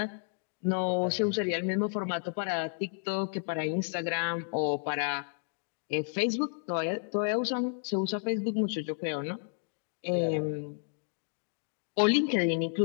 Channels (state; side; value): silent; right; 57 dB below the other